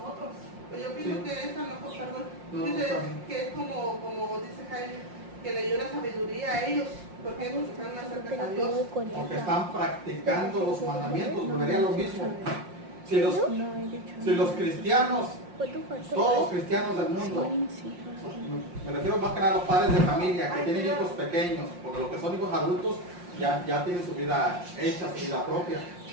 Pues yo pienso que esa que es como dice Jaime, que le dio la sabiduría a ellos, porque ellos están más cerca a Dios. Porque están practicando los mandamientos, volvería a lo mismo. Si los cristianos, todos los cristianos del mundo, me refiero más que nada a los padres de familia que tienen hijos pequeños, porque los que son hijos adultos ya tienen su vida hecha, su vida propia.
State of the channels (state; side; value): late; left; 5.6 ms